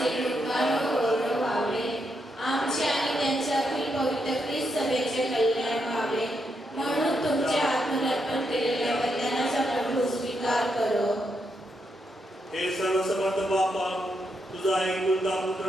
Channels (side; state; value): both; normal; correlation 0.81